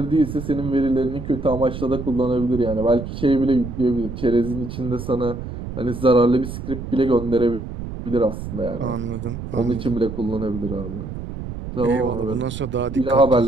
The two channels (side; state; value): right; noise; rumble, 8 dB below the sound